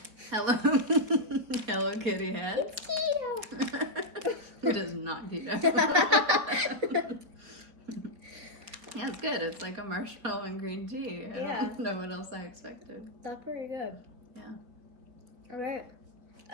Hello Kitty heads. It's keto. It is not keto. Yeah, it's good. It's like a marshmallow and green tea. I don't know what else I expected. That's pretty good. Yeah. Alright.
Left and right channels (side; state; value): left; late; 4.4 ms